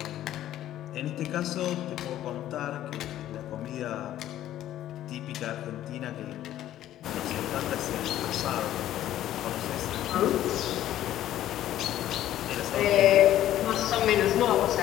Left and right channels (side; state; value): right; quieter; 12.7 dB